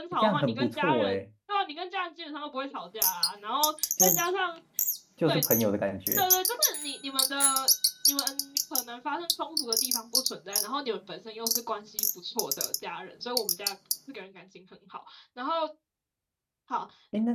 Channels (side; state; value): both; identical; correlation 1.00